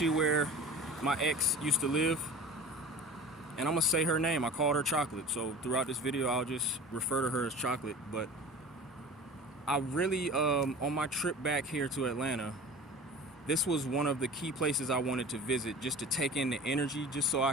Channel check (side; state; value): both; normal; correlation 0.38